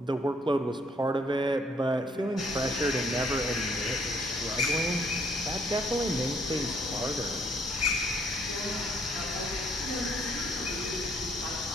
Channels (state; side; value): normal; both; correlation 0.67